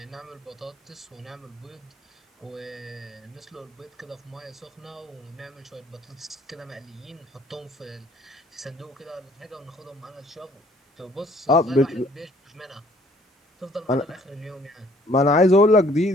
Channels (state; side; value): normal; both; correlation 0.60